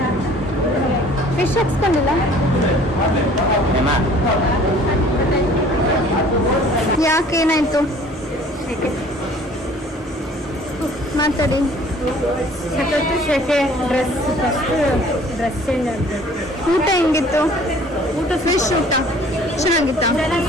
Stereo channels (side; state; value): both; normal; correlation 0.52